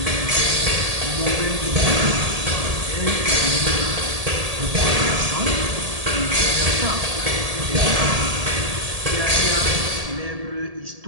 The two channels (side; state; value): left; late; 1.7 ms